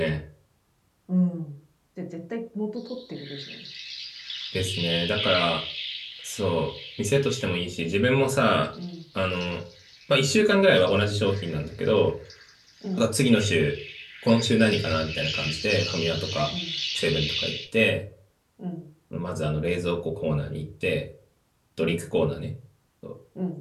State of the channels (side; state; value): both; identical; correlation 1.00